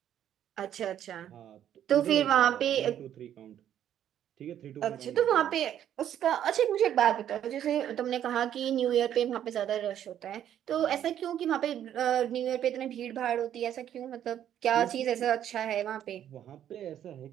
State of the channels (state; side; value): quieter; left; 10.5 dB